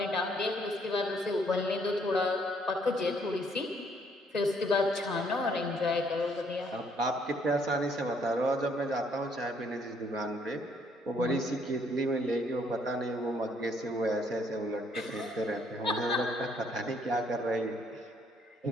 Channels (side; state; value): both; normal; correlation 0.67